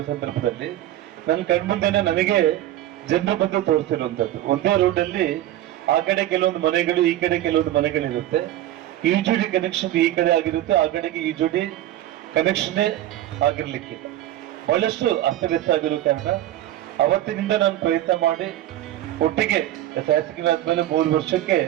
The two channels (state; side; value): quieter; left; 13.6 dB